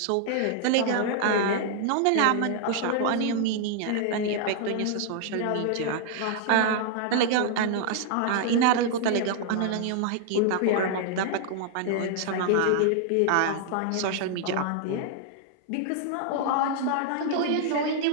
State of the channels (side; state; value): both; different; correlation 0.00